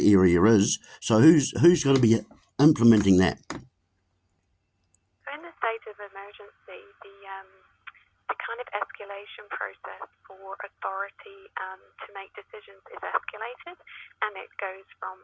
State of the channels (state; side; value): identical; both; correlation 1.00